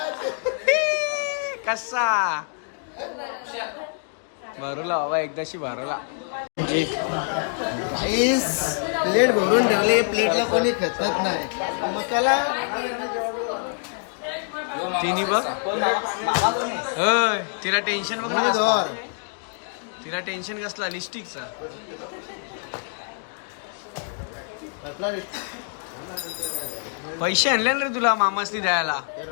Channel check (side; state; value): right; silent; 62 dB below the other